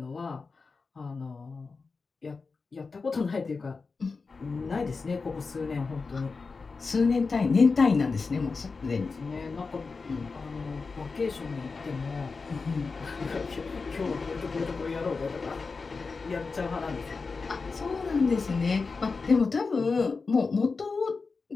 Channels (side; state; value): right; quieter; 4.4 dB